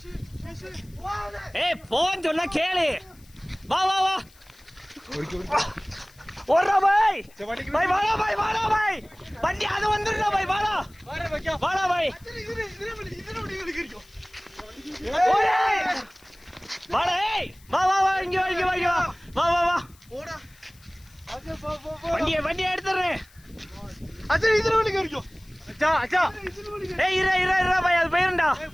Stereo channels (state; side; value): noise; left; hiss, 28 dB below the sound